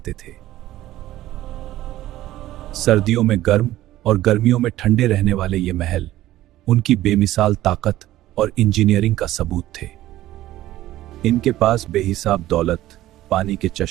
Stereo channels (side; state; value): left; quieter; 14.9 dB